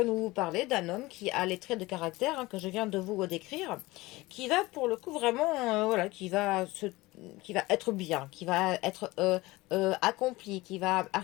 nous parler d'un homme qui a les traits de caractère que je viens de vous décrire, qui va pour le coup vraiment, voilà, qui va être bien, qui va être accompli, qui va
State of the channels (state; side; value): quieter; right; 20.5 dB